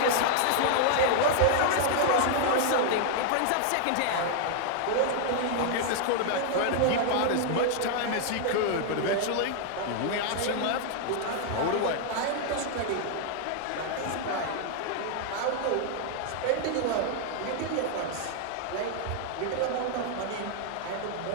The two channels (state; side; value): different; both; correlation 0.00